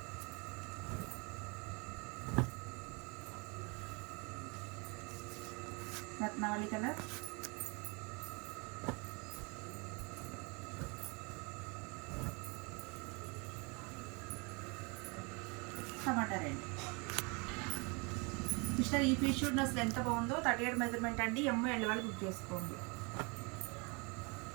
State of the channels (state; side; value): quieter; left; 30.6 dB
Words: రత్నావళి కలర్, టమాటా రెడ్. సిస్టర్ ఈ పీస్ షూట్ అసలు ఎంత బాగుందో. 38 మెజర్మెంట్ అండి. ML వాళ్ళు బుక్ చేసుకోండి.